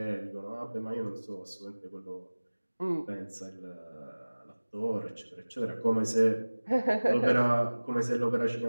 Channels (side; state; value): both; inverted; correlation -1.00